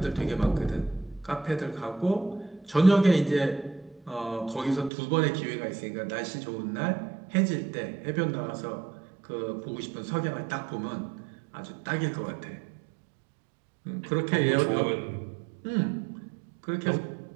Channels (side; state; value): left; drops out; at 4.9 s